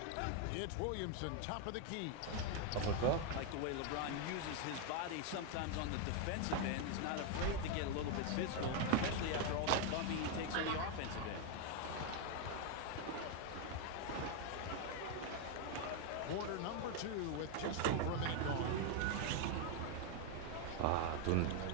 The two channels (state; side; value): different; both; correlation 0.01